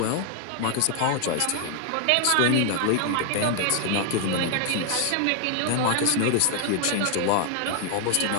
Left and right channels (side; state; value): both; different; correlation 0.00